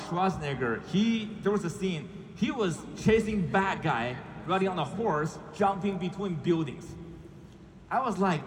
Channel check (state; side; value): identical; both; correlation 1.00